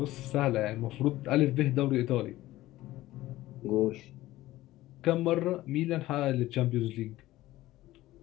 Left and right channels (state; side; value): quieter; right; 16.4 dB